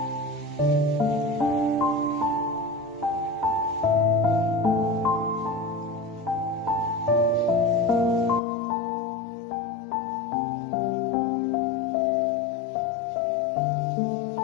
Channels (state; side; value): drops out; right; at 8.4 s